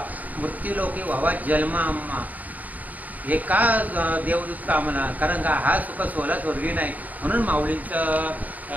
मृत्यू लोकी व्हावा जन्म आम्हा हे का देवदूत का म्हणा कारण का हा सुख सोहळा स्वर्गी नाही म्हणून माऊलींचं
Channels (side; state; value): left; late; 0.077 ms